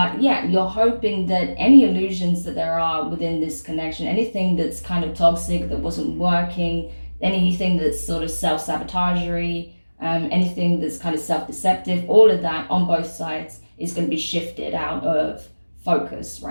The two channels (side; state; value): both; inverted; correlation -1.00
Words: yeah, you're hoping that any illusions that there are within this connection, anything that's kind of toxic, that wasn't working, anything that's sort of self-sabotagery, anything that's kind of self-deceptive, all of that on both sides is going to be shifted out of focus,